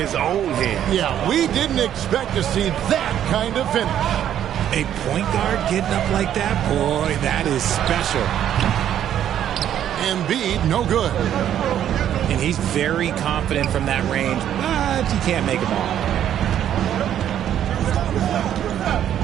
own hands. Yeah, we didn't expect to see that kind of finish. A point guard getting up like that? Boy, that is special. Embiid, no good. And he's very confident from that range, but he can't make them all.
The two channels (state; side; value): quieter; left; 10.5 dB